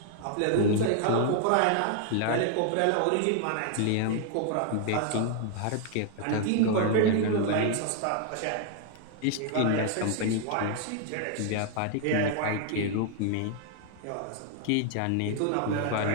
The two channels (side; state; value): both; different; correlation 0.00